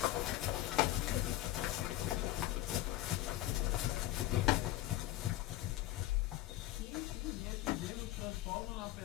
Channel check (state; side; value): quieter; right; 15.5 dB